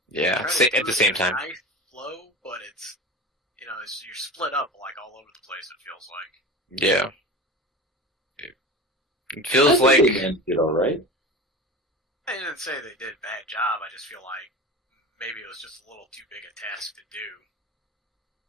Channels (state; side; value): normal; both; correlation 0.31